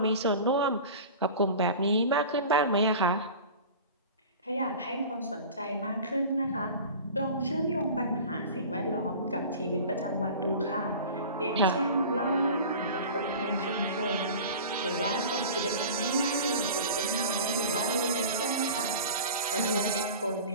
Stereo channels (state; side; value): inverted; both; correlation -0.37